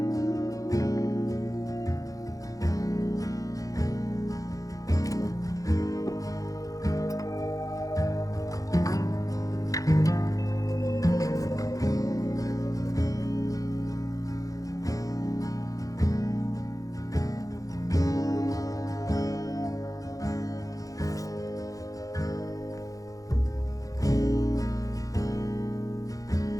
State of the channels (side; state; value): right; late; 0.17 ms